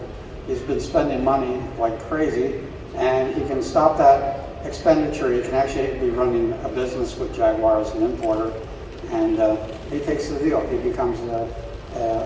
He's been spending money like crazy, and he can stop that expenditure. He can actually be running a business with Jaguar as an importer, and he takes the deal. He becomes a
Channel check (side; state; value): both; identical; correlation 1.00